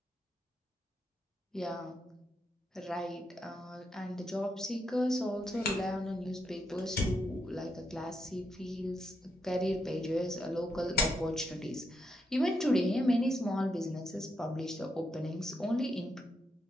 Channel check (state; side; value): normal; both; correlation 0.81